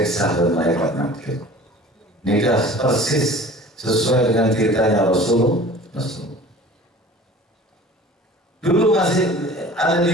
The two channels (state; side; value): normal; both; correlation 0.44